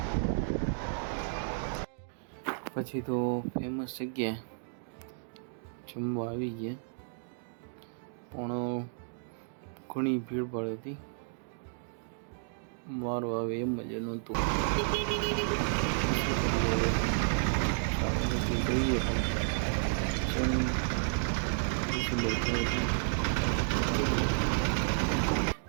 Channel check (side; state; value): left; silent; digital silence